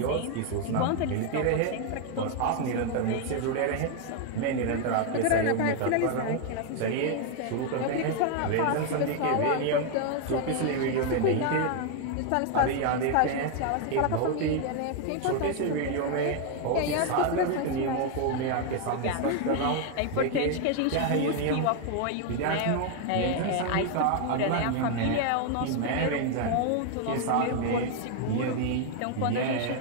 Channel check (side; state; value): both; different; correlation 0.00